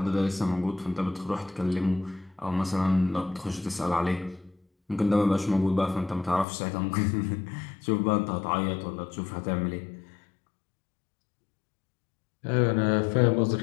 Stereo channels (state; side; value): drops out; right; at 6.5 s